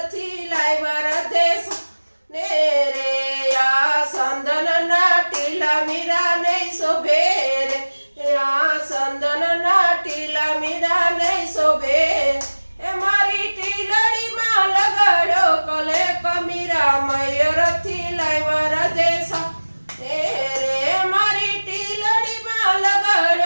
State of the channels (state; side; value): inverted; both; correlation -1.00